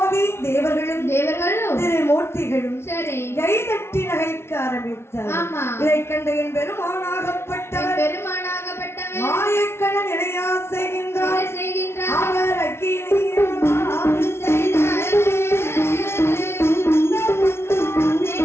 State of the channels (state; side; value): late; right; 0.12 ms